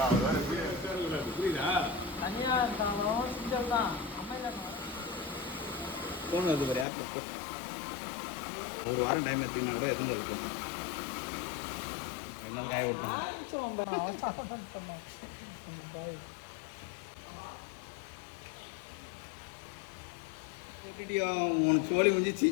தனியாக இருந்தாலும் சிஞ்சல் தான் அமைதியாக ஃபோன் வருது பாரு, யாருக்கு போ. ஒரு வாரம் டைம் எடுத்தீங்கன்னா கூட எதுவும் இருக்கும். ரெண்டு நாள் காய விட்டோம். பண்ணேன். உனக்கு சோழி முடிஞ்சிச்சு.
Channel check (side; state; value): right; drops out; at 6.9 s